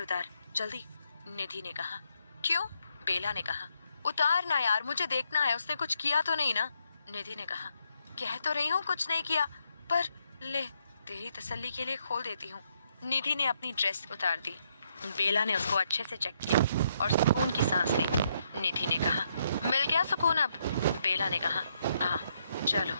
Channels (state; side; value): inverted; both; correlation -0.76